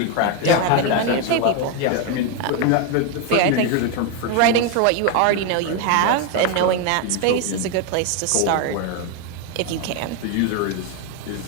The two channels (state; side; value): different; both; correlation 0.02